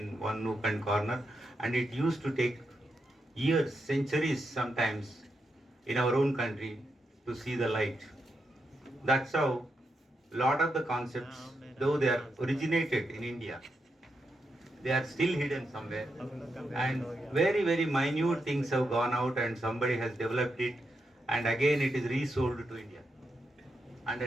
one nook and corner, and it used to take years, centuries sometimes in our own country to see the light. That's how a lot of the concepts, though they are originated in India, they are still hidden somewhere. And very, very minute things have gone out and somebody has developed it and again it is resold to India under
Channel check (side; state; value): both; normal; correlation 0.84